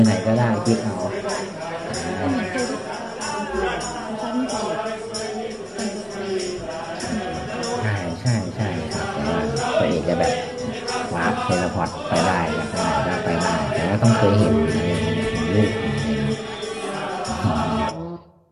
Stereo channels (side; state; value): both; identical; correlation 1.00